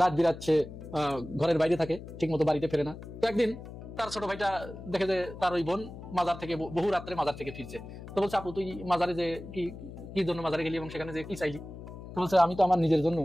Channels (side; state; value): left; noise; hum, 13 dB below the sound